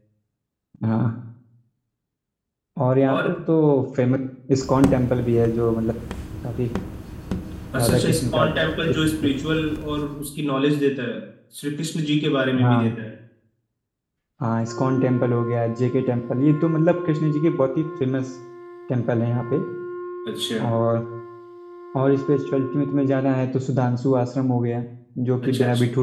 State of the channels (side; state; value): both; identical; correlation 1.00